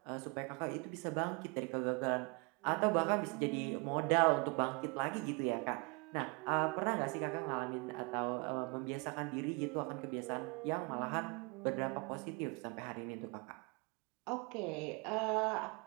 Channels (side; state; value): left; quieter; 31.4 dB